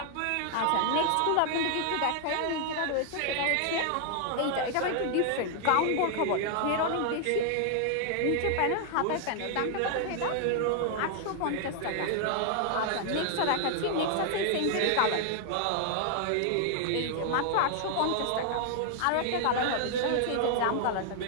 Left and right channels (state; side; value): different; both; correlation 0.00